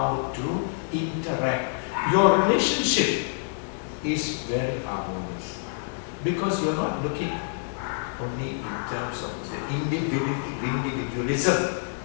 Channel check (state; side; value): silent; right; digital silence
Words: to interact. Your relationship is very harmonious because you're not looking only in terms of the individualism